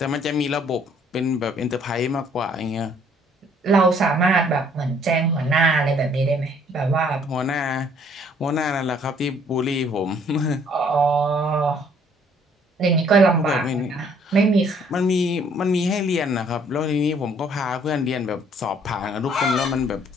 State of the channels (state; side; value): normal; both; correlation 0.61